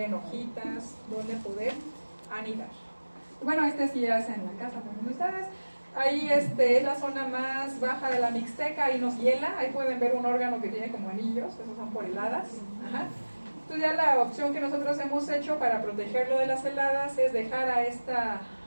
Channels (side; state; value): both; inverted; correlation -1.00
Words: hojitas donde poder anidar. Bueno, sí es en la casa también de ustedes. Ahí es la zona más baja de la Mixteca, ahí nos hiela, ahí pueden ver un órgano que tiene como anillos, esos son por heladas. Ajá. Entonces ya la opción que nosotros hemos hecho para protegerlo de las heladas es dejar a esta